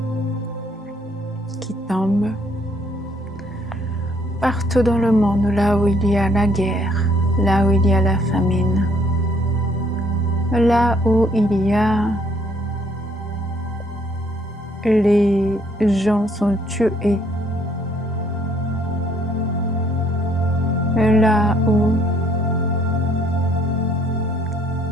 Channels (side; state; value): both; normal; correlation 0.65